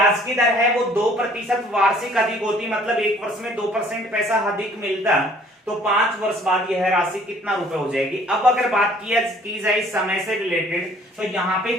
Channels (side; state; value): both; normal; correlation 0.56